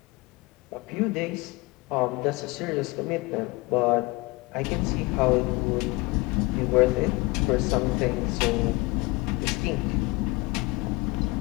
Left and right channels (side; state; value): right; quieter; 23.7 dB